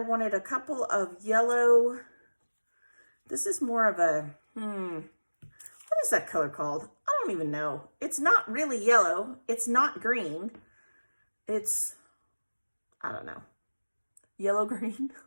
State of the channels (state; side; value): inverted; both; correlation -1.00